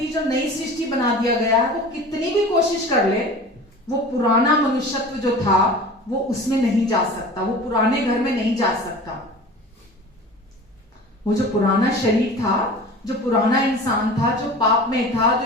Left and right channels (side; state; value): both; normal; correlation 0.38